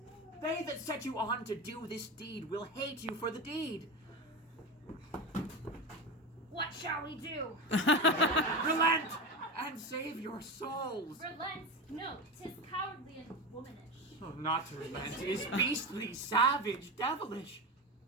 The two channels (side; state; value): both; normal; correlation 0.21